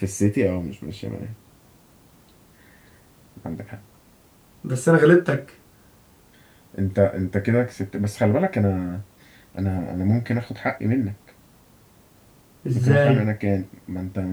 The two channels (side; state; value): both; identical; correlation 1.00